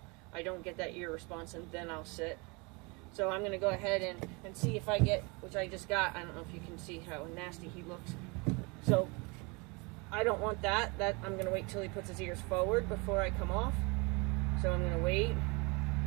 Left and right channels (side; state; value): left; quieter; 28.9 dB